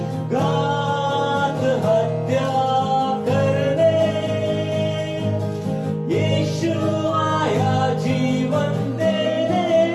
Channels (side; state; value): both; identical; correlation 1.00